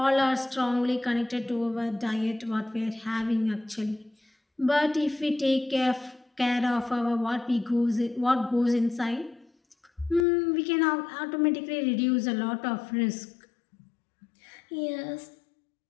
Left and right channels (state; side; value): drops out; right; at 10.2 s